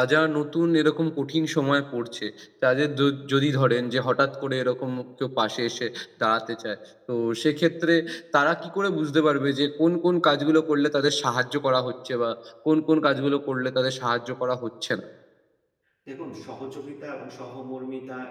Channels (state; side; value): identical; both; correlation 1.00